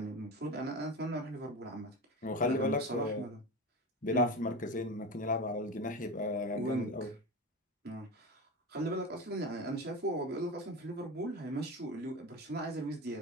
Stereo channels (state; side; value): normal; both; correlation 0.25